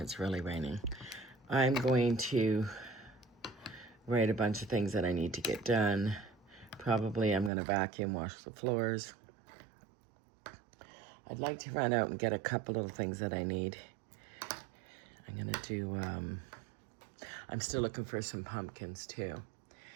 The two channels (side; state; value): left; drops out; at 7.5 s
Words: really raining. I'm going to write a bunch of things that I need to get done. Probably I'm going to vacuum, wash the floors. I'd like to run out and get a couple little things that I need. I'm going to do, I'm still looking for some pumpkins too.